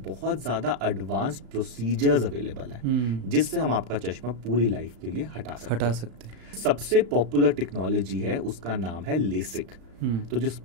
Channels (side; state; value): left; late; 35 ms